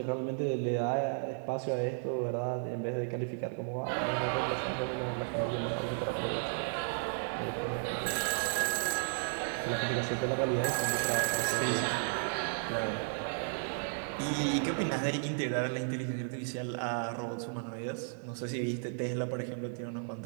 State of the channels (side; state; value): left; silent; digital silence